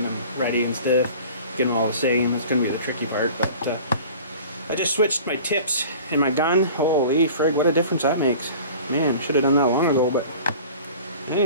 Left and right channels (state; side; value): inverted; both; correlation -0.43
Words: them ready and stuff, getting them all the same. It's going to be the tricky part, but I just switched my tips in my gun. Holy frig, what a difference that makes. Man, should have done that long ago, but